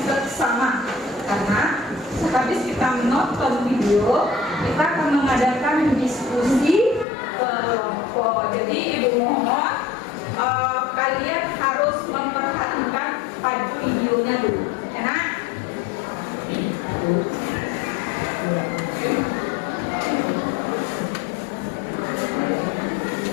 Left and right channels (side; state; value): right; drops out; at 7.1 s